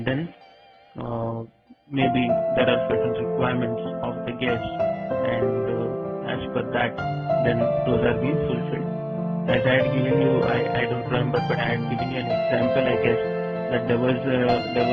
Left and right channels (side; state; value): both; identical; correlation 1.00